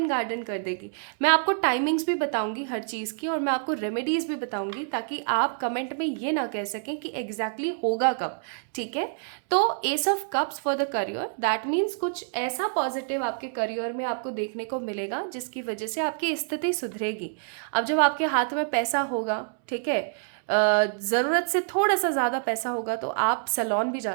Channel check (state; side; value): silent; left; 60 dB below the other